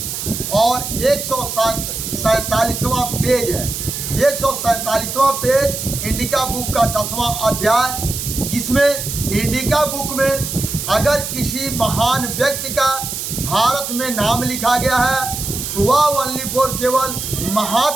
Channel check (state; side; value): noise; right; hiss, 5 dB below the sound